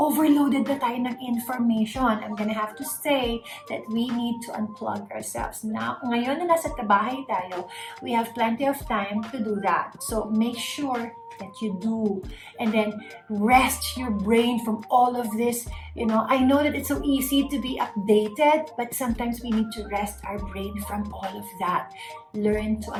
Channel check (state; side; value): identical; both; correlation 1.00